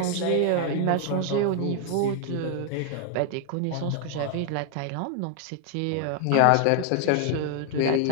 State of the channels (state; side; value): different; both; correlation 0.00